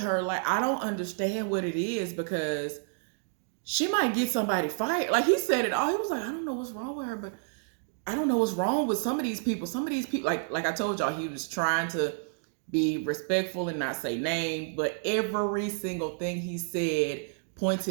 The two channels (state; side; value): silent; left; digital silence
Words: Like, I don't understand what it is because she might get somebody fired. Like, he said it all. He was like, I don't know what's wrong with her, but I don't know what's wrong with some of these people. Some of these people, like I told y'all, he was trying to be respectful and not say name, but every single thing he said